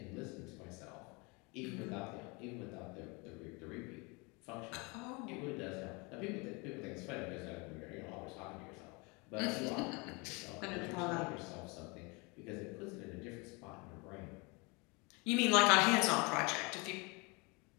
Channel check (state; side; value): quieter; right; 28.7 dB